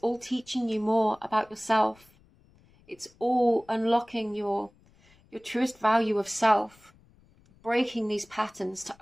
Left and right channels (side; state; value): left; noise; rumble, 30 dB below the sound